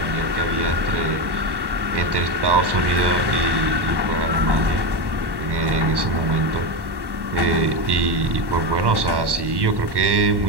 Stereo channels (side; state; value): left; late; 1.1 ms